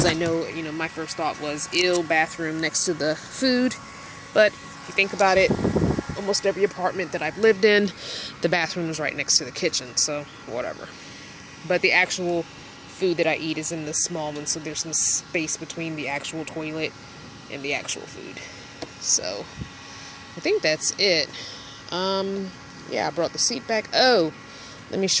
I know, my first thought was, bathroom next to the food. But if you think about it, almost every apartment that I've lived in, the bathroom is right next to the kitchen, so whatever. But the actual food that I eat is in the small one, so there's some space between the actual toilet and the actual food. So I think that's it. Yeah, I brought the seat back. Oh, let me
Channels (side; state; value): both; identical; correlation 1.00